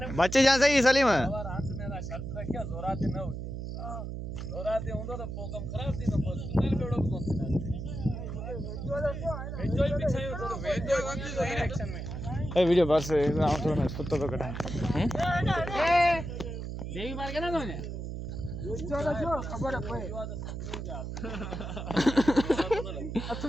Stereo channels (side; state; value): right; noise; hum, 6 dB below the sound